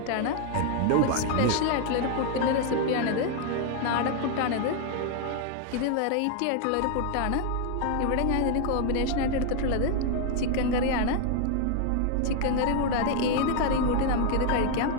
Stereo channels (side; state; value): both; different; correlation 0.00